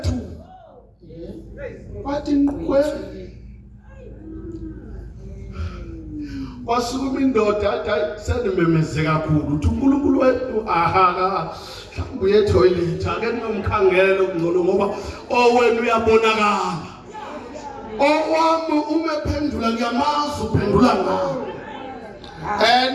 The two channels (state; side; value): identical; both; correlation 1.00